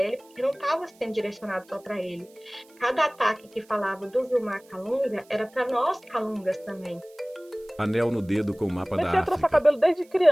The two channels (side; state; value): right; noise; hiss, 29 dB below the sound